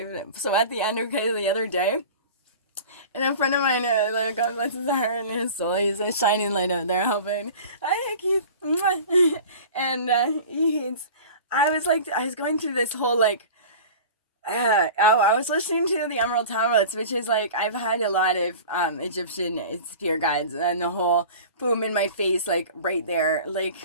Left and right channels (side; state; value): both; inverted; correlation -0.38